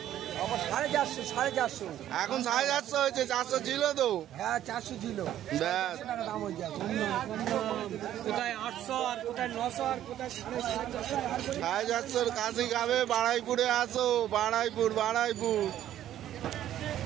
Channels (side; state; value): left; quieter; 11.9 dB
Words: 450 এখন 450 হয়েছে, 400 ছিল তো। হ্যাঁ 400 ছিল। ব্যাস, দাম হয়ে যায়। কোথায় 800 আর কোথায় 900 আর কোথায় 450 খাসি খাবে। বাড়াইপুরে আসো, বাড়াইপুর, বাড়াইপুর।